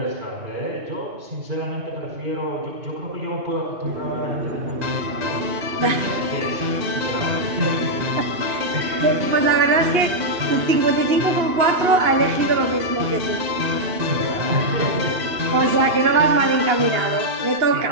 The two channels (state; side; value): late; left; 2.8 ms